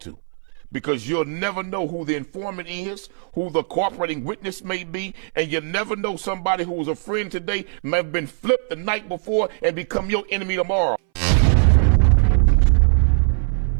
to, because you'll never know who the informant is, who the cooperating witness may be, and you never know somebody who was a friend today may have been flipped the night before and become your enemy tomorrow.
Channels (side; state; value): left; silent; 62 dB below the other